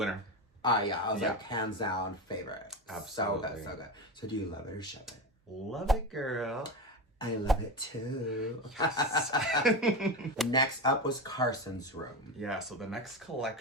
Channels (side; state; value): both; normal; correlation 0.20